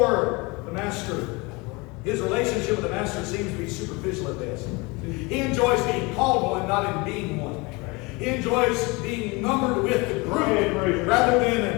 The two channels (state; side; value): quieter; right; 26.2 dB